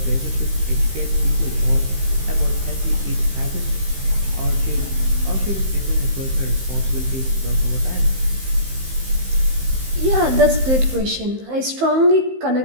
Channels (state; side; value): late; left; 15 ms